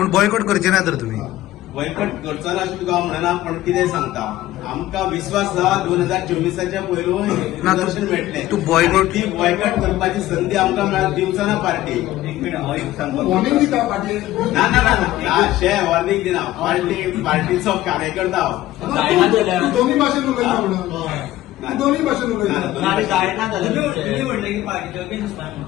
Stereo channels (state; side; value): quieter; right; 15.1 dB